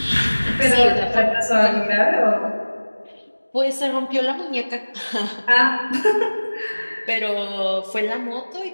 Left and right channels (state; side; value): inverted; both; correlation -1.00